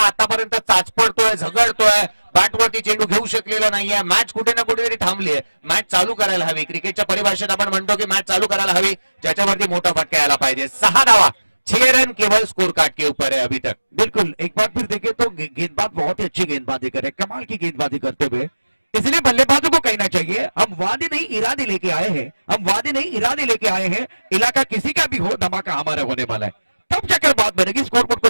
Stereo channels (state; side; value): inverted; both; correlation -1.00